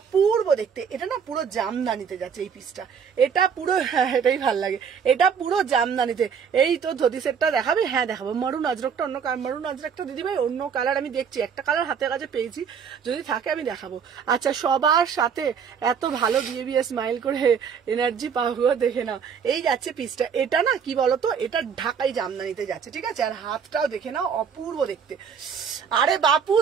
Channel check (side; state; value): left; quieter; 6.9 dB